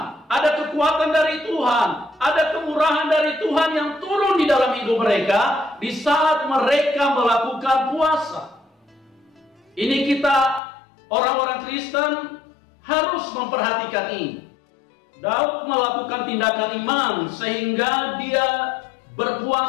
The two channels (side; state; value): right; drops out; at 10.6 s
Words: ada kekuatan dari Tuhan, ada kemurahan dari Tuhan yang turun di dalam hidup mereka di saat mereka melakukan puasa. Ini kita orang-orang Kristen harus memperhatikan ini. Daud melakukan tindakan iman sehingga dia